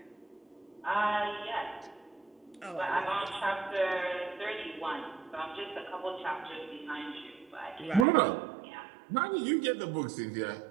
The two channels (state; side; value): drops out; left; at 8.1 s